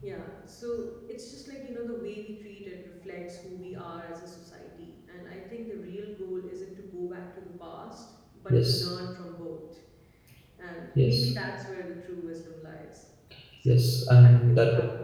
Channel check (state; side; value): identical; both; correlation 1.00